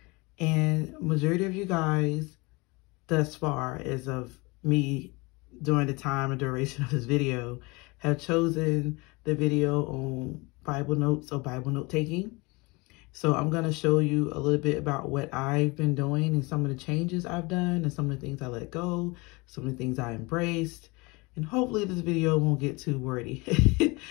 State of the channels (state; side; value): quieter; right; 25.7 dB